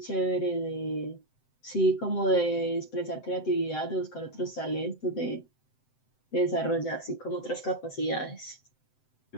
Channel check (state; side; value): late; right; 7.8 ms